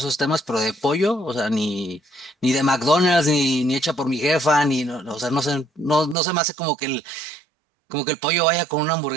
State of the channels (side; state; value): left; drops out; at 6.2 s